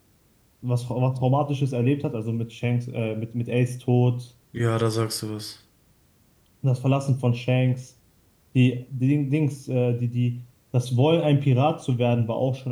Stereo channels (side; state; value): both; identical; correlation 1.00